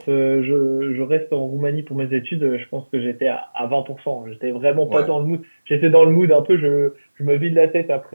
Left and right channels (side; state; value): both; inverted; correlation -1.00